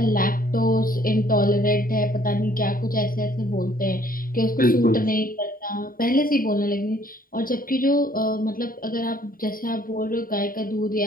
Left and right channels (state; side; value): late; right; 0.41 ms